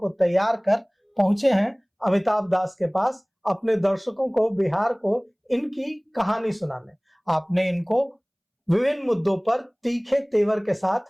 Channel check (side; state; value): both; identical; correlation 1.00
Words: तैयार कर पहुंचे हैं अमिताभ दास के पास, अपने दर्शकों को, बिहार को इनकी कहानी सुनाने। आपने इनको विभिन्न मुद्दों पर तीखे तेवर के